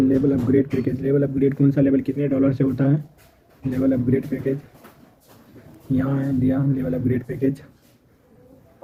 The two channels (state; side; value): identical; both; correlation 1.00